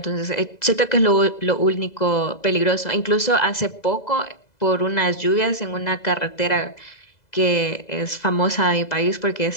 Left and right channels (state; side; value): late; right; 2.0 ms